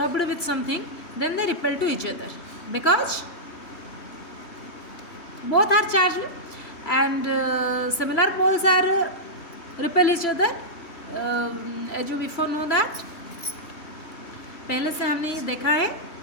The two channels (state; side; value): late; right; 3.2 ms